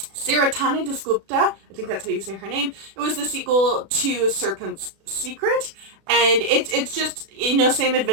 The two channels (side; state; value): left; late; 36 ms